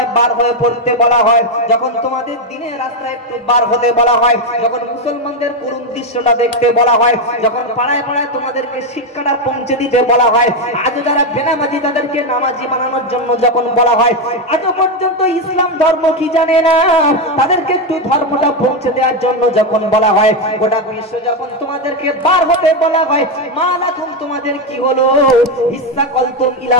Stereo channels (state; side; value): normal; both; correlation 0.07